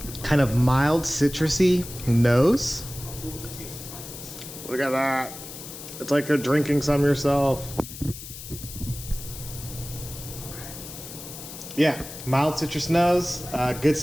Kind of mild citrusy nose. Look at that. It's like you're drinking some yourself. Yeah, mild citrus nose. Good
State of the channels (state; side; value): noise; left; hiss, 12 dB below the sound